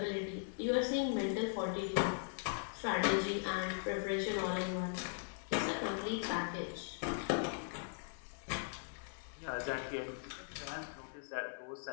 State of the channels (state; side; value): silent; right; 51 dB below the other